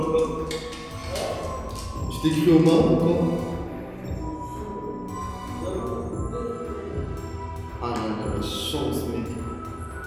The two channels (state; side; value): identical; both; correlation 1.00